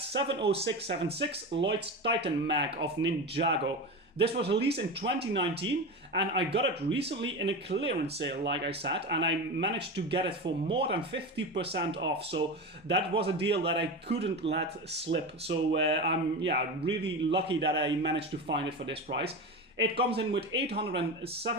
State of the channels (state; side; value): normal; both; correlation 0.24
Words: Lloyd's Titan Mech of Ninjago. This was released in 2019 and I got it recently in a clearance sale, like I said, and I managed to get it for more than 50% off. So that was a deal that I couldn't let slip. So I'm really lucky that I managed to find it for this price. It comes in with